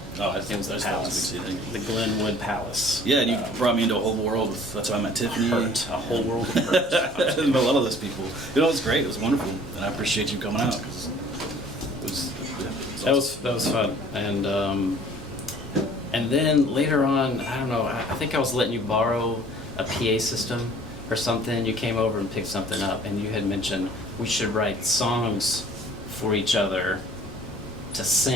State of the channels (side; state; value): left; noise; hum, 21 dB below the sound